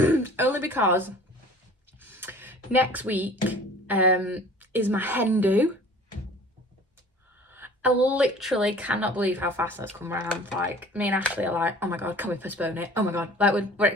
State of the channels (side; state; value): both; normal; correlation 0.47